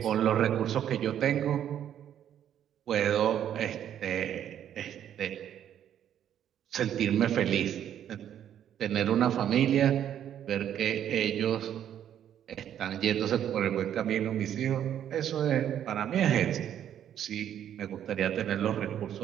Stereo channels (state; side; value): quieter; left; 10.1 dB